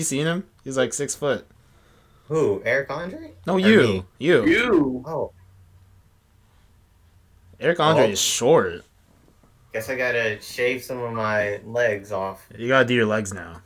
seen him? He's like 6 foot. Who? Eric Andre? No, Or you. me? You. You. Oh, Eric Andre Oh. is short. guess I gotta shave some of my legs off. You gotta do your legs now.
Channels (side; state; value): both; identical; correlation 1.00